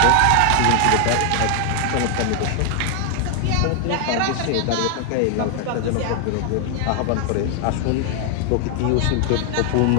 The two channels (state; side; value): different; both; correlation 0.00